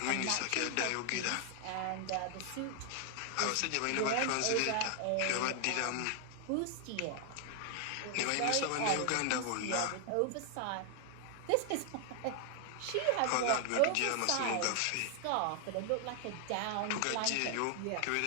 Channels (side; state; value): both; different; correlation 0.00